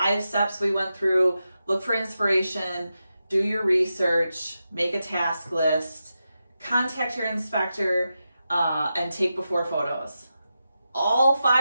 steps we went through: look for inspiration, do your research, make a task list, contact your inspector, and take before photos. All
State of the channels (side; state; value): both; inverted; correlation -0.89